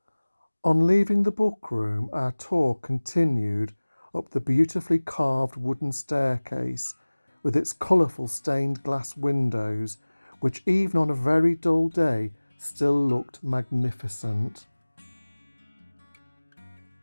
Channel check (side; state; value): both; inverted; correlation -1.00